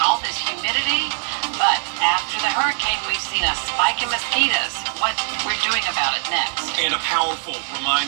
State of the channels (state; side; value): silent; left; 63 dB below the other